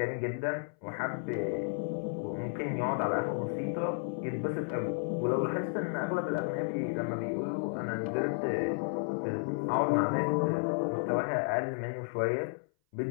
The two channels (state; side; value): silent; right; 56 dB below the other